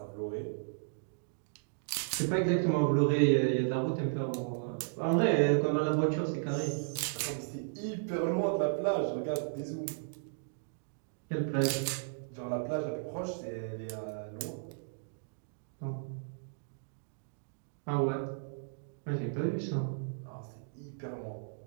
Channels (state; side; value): silent; left; digital silence